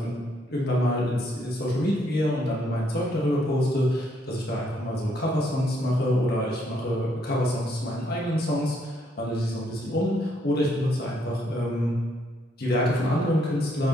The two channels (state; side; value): normal; both; correlation 0.71